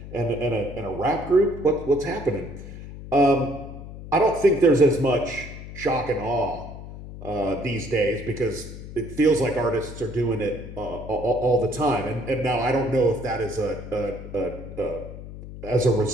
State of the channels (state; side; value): noise; left; hum, 12 dB below the sound